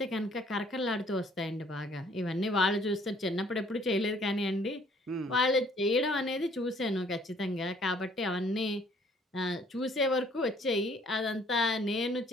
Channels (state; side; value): normal; both; correlation 0.60